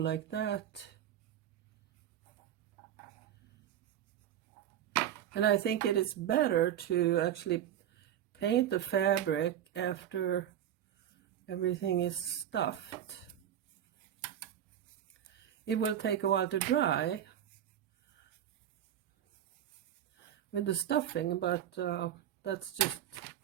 that. And I think it is better to actually paint the fabric after everything is stuffed. It will take a while to dry with the stuffing, but that's just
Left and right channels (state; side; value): quieter; left; 10.6 dB